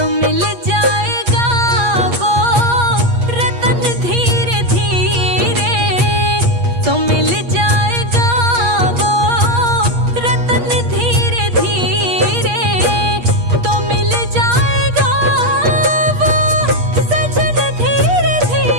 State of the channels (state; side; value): late; left; 8.4 ms